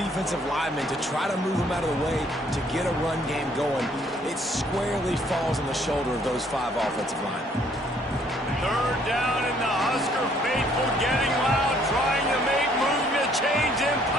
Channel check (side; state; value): both; normal; correlation 0.63